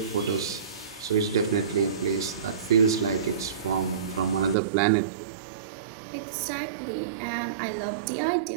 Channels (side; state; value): left; drops out; at 4.5 s